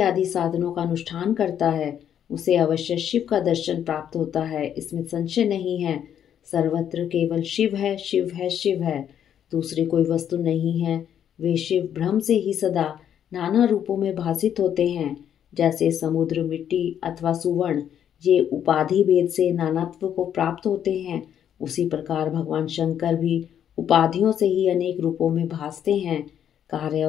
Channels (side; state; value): right; quieter; 9.5 dB